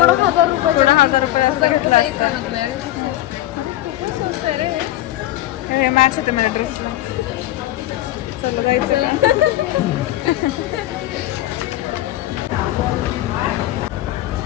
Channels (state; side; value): quieter; right; 14.8 dB